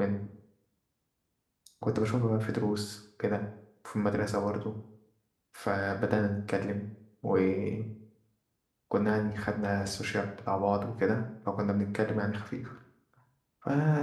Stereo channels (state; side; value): identical; both; correlation 1.00